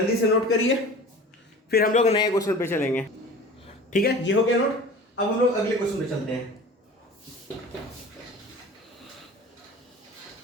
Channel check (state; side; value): normal; both; correlation 0.39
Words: से नोट करिए, फिर हम लोग नए क्वेश्चन पे चलेंगे। ठीक है, ये हो गया नोट। अब हम लोग अगले क्वेश्चन पे चलते हैं।